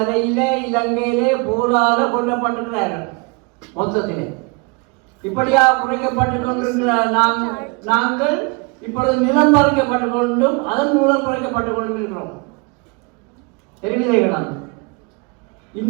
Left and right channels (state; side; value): quieter; left; 30.3 dB